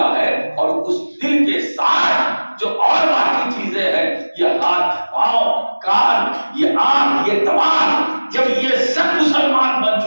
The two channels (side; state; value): both; inverted; correlation -1.00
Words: ہے، اور اس دل کے ساتھ جو اور باقی چیزیں ہیں، یہ ہاتھ، پاؤں، کان، یہ آنکھ، یہ دماغ، جب یہ سب مسلمان بن